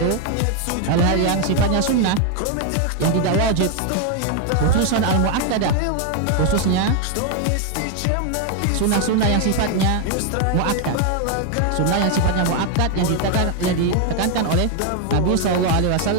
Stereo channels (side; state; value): both; different; correlation 0.01